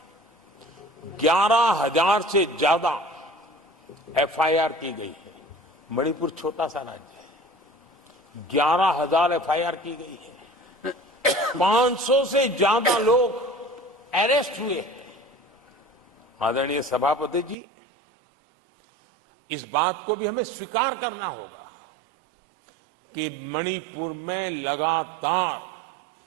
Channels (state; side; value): drops out; left; at 17.6 s